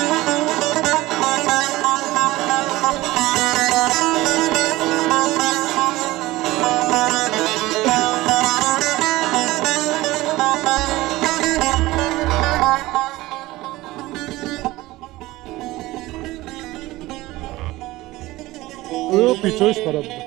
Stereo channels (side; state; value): left; quieter; 18.5 dB